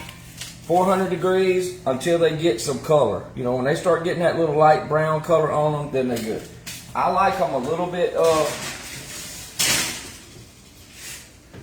400 degrees until they get some color. When they start getting that little light brown color on them, then they're good. I like them a little bit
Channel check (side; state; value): both; identical; correlation 1.00